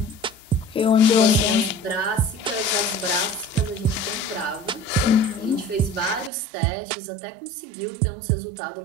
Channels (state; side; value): drops out; left; at 6.3 s